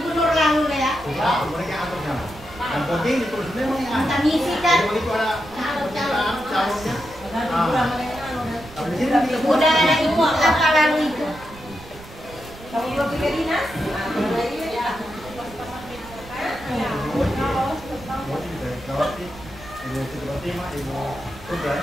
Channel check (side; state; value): right; noise; rumble, 18 dB below the sound